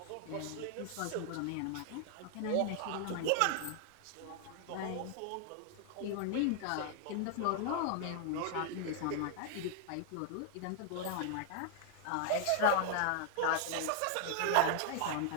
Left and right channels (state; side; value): different; both; correlation -0.01